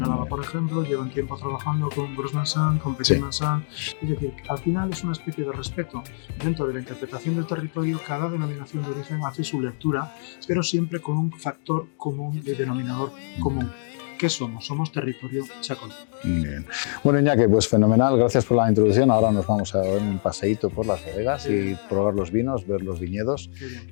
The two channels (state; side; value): silent; right; 62 dB below the other